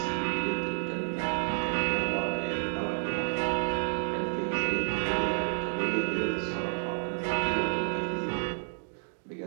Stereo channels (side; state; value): left; silent; digital silence